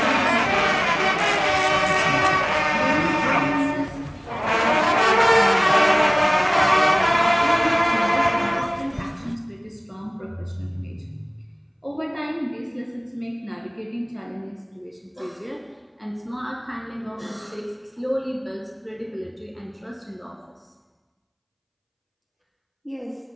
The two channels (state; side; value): identical; both; correlation 1.00